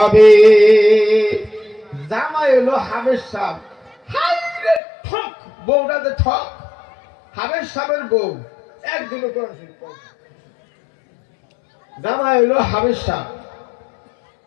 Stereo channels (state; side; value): drops out; right; at 4.8 s